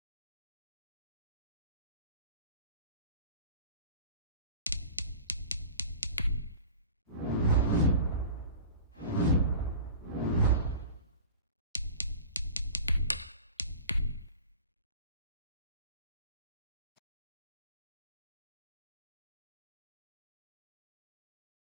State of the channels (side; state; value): both; inverted; correlation -0.40